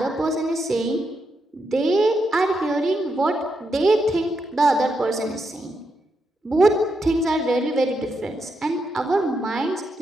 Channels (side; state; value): both; normal; correlation 0.82